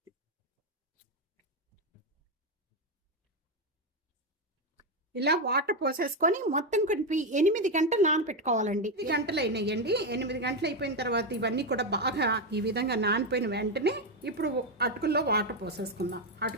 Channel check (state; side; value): normal; both; correlation 0.08